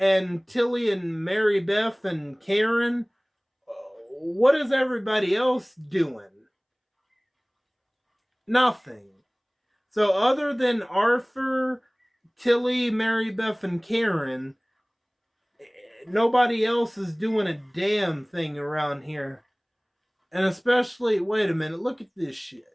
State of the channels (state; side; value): identical; both; correlation 1.00